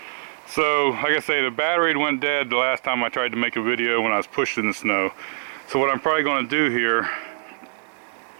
So, like I say, the battery went dead the last time I tried to make a video when I was pushing the snow. So what I'm probably going to do here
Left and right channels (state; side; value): silent; left; digital silence